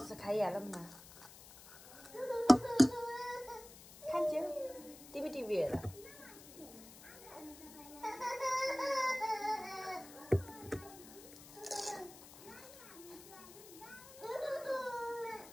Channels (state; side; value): noise; left; hiss, 18 dB below the sound